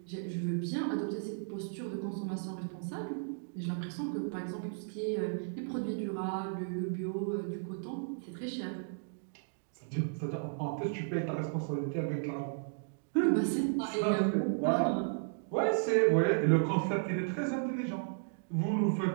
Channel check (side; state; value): left; silent; digital silence